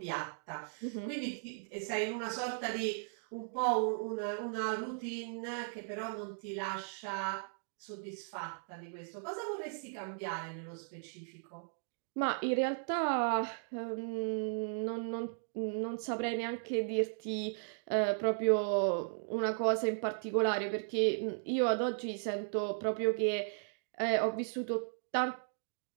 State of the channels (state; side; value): silent; left; digital silence